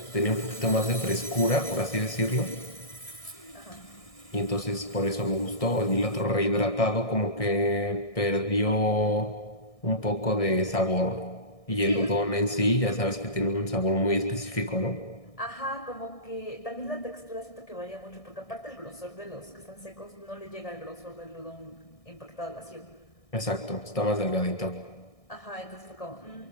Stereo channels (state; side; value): late; right; 1.6 ms